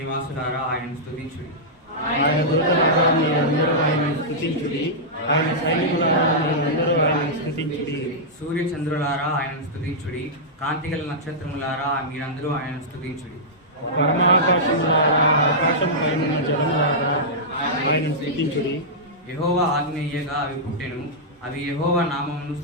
ఆయనను స్తుతించుడి. ఆయన దూతలారా మీరందరూ ఆయనను స్తుతించుడి, ఆయన సైనికులారా మీరందరూ ఆయనను స్తుతించుడి. సూర్య చంద్రులారా ఆయనను స్తుతించుడి, కాంతిగల నక్షత్రములారా మీరందరూ ఆయనను స్తుతించుడి. పరమాకాశములారా ఆకాశం పైన జలములారా ఆయనను స్తుతించుడి. యెహోవా ఆజ్ఞ ఇయ్యగా అవి పుట్టెను, అవి యెహోవా నామమును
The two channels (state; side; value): normal; both; correlation -0.11